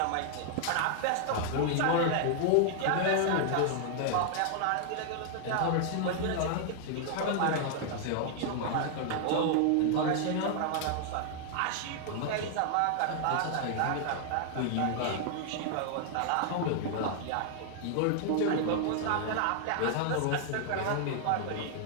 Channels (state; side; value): different; both; correlation 0.00